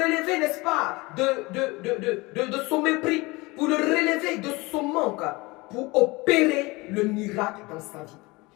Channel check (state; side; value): quieter; right; 23.5 dB